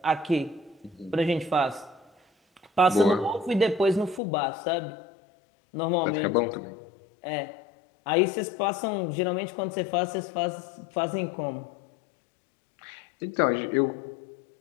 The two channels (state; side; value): drops out; right; at 4.2 s